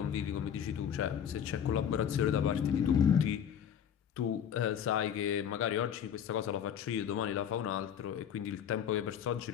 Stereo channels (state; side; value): quieter; right; 8.8 dB